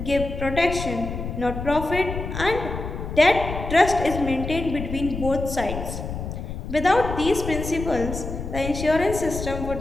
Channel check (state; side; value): noise; left; rumble, 7 dB below the sound